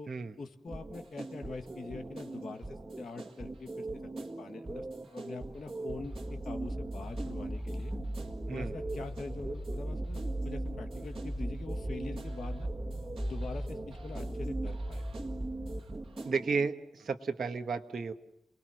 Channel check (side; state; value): both; normal; correlation 0.92